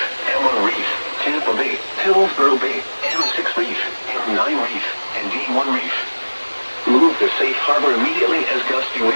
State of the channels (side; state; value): both; inverted; correlation -1.00